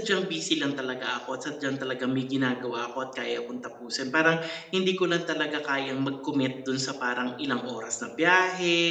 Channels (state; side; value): identical; both; correlation 1.00